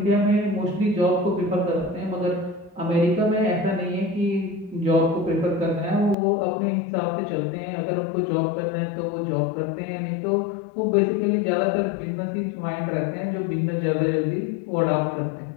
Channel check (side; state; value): right; drops out; at 6.2 s